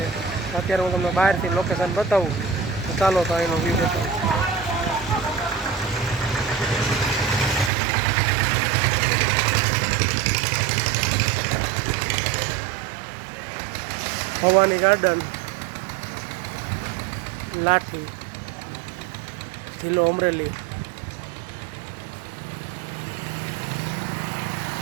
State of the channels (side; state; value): left; drops out; at 7.7 s